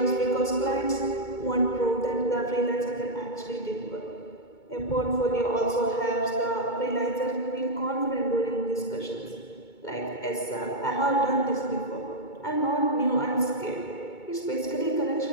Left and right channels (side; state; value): right; late; 2.2 ms